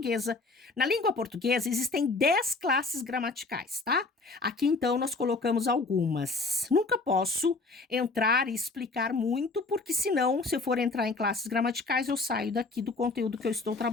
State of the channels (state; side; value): quieter; right; 3.6 dB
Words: Na língua portuguesa, existem 10 classes gramaticais, tá? Aqui, então, nós colocamos algumas. Nunca posso entrar e explicar muito, porque senão, se eu for entrar em classes gramaticais, eu saio daqui do conteúdo que eu estou